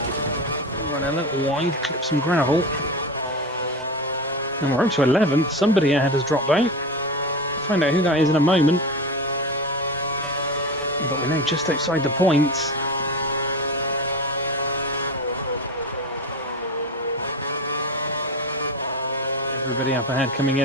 Run a little wide, clip some gravel. And we're up to 11th. Somebody ahead has dropped out. Find out who that is in a moment. But we're now just outside the points. Everybody up ahead coming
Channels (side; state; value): both; normal; correlation 0.24